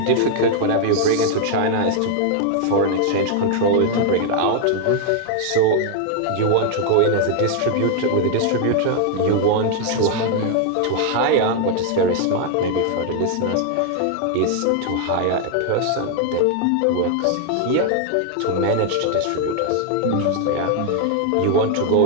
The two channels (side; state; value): both; different; correlation 0.00